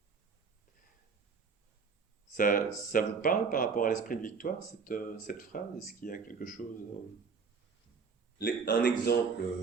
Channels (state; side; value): quieter; left; 5.3 dB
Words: Ça vous parle par rapport à l'esprit de victoire, cette phrase? Est-ce qu'il y a quelque chose... Un exemple,